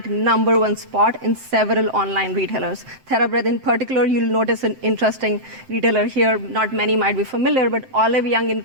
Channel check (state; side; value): late; left; 8.0 ms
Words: #1 spot in several online retailers. TerraBreath in particular, you'll notice an interesting retailer here. Not many might be familiar, but Olive Young in